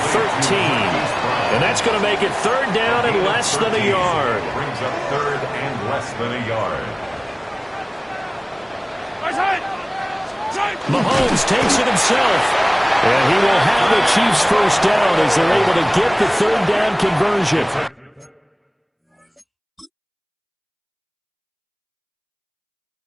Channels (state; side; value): identical; both; correlation 1.00